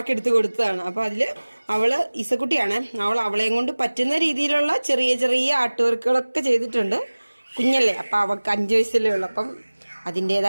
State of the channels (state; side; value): inverted; both; correlation -1.00